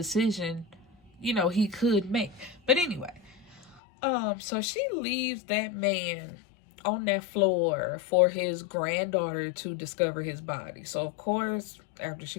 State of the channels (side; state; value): right; drops out; at 3.8 s